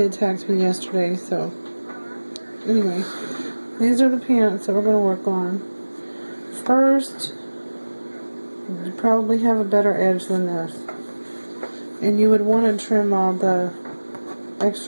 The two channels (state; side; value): inverted; both; correlation -1.00